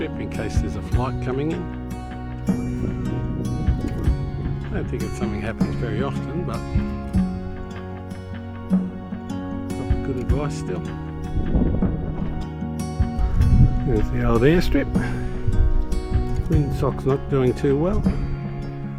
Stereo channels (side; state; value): both; identical; correlation 1.00